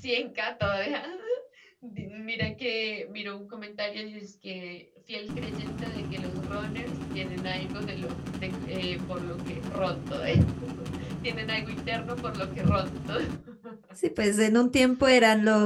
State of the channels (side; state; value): both; identical; correlation 1.00